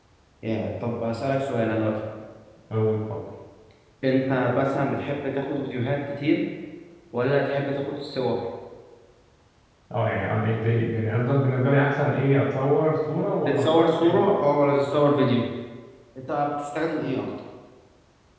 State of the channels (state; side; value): identical; both; correlation 1.00